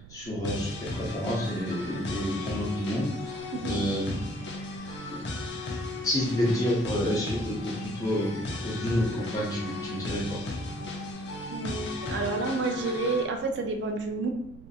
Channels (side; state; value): right; noise; rumble, 18 dB below the sound